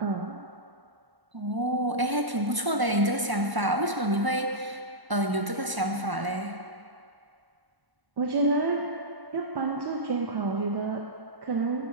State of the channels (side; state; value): left; late; 1.0 ms